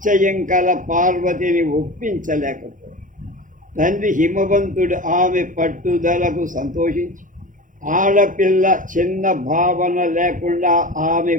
కల పార్వతిని ఒప్పించలేకపోయింది. తండ్రి హిమవంతుడు ఆమె పట్టుదలకు సంతోషించి ఆడపిల్ల చిన్న భావన లేకుండా ఆమె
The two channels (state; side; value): late; left; 0.38 ms